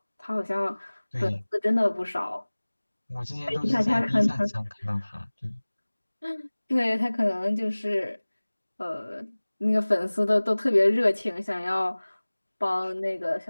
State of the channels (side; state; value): both; inverted; correlation -1.00